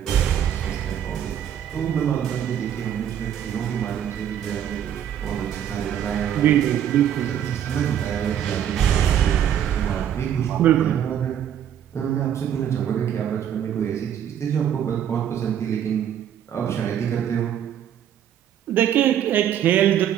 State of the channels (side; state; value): left; quieter; 9.8 dB